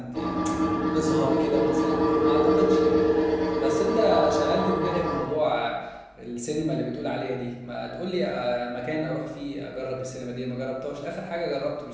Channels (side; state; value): both; identical; correlation 1.00